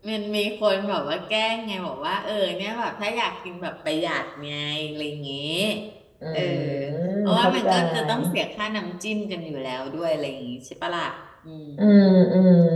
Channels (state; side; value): identical; both; correlation 1.00